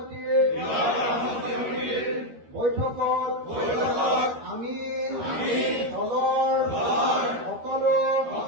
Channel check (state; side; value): late; left; 13 ms